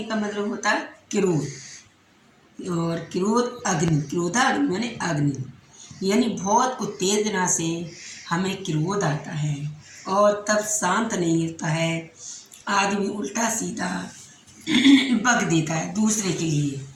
का मतलब होता है क्रोध, और क्रोध अग्नि, क्रोधा अग्नि माने अग्नि, यानी बहुत उत्तेजना से हमें क्रोध आता है और तब शांत नहीं रहता है। आदमी उल्टा सीधा बक देता है दूसरे के लिए,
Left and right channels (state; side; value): identical; both; correlation 1.00